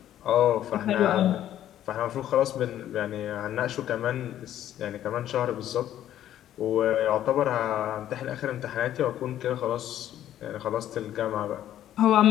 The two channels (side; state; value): right; quieter; 11.8 dB